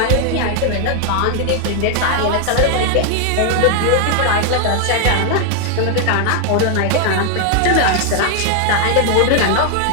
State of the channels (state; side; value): different; both; correlation 0.00